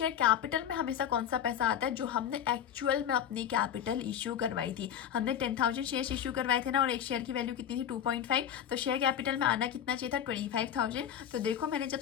कैपिटल में हमेशा कौन सा पैसा आता है, जो हमने एक्चुअल में अपनी कैपिटल इश्यू करवाई थी। हमने 10,000 शेयर इश्यू करवाए थे ना, और एक शेयर की वैल्यू कितनी थी, 2.5। तो शेयर कैपिटल में आना कितना चाहिए था, 25,000। तो देखो मैंने जब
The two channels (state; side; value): quieter; right; 9.3 dB